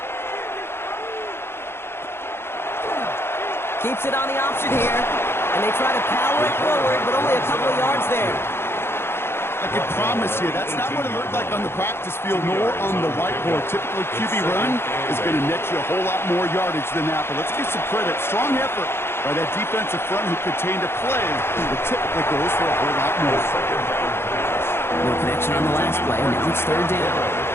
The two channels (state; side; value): late; right; 0.11 ms